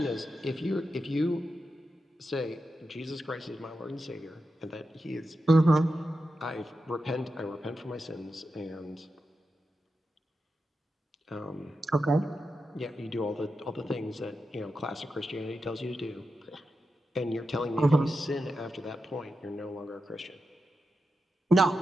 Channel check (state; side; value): normal; both; correlation 0.89